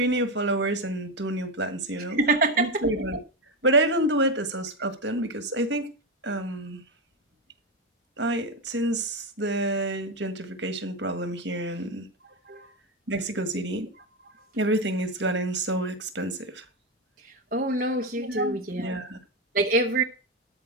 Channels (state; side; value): normal; both; correlation 0.11